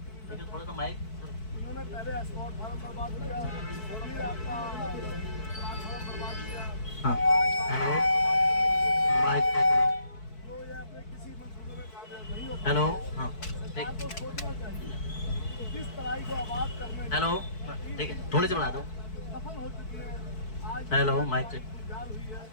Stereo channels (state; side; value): late; right; 4.6 ms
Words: थोड़ा सा माइक। हाँ, हेलो, माइक। हेलो, हाँ, ठीक। हेलो, ठीक है, थोड़ी सी बढ़ा दो। Hello, mic check.